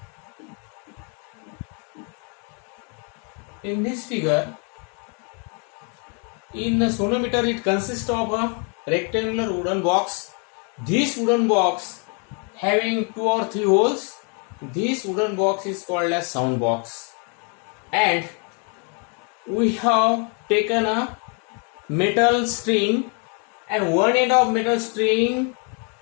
In this figure, in the sonometer, it consists of a rectangular wooden box. This wooden box having 2 or 3 holes. This wooden box is called as sound box. And we have taken a metal string, and one end of metal string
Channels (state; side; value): quieter; right; 37.5 dB